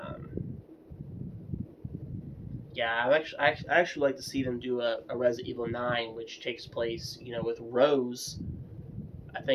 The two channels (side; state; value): both; identical; correlation 1.00